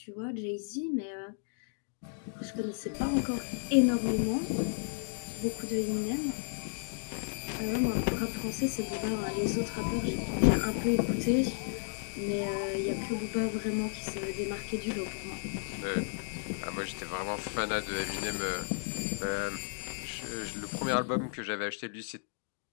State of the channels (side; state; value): right; silent; digital silence